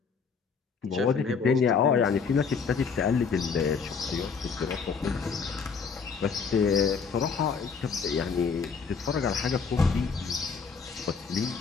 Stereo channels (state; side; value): quieter; right; 5.6 dB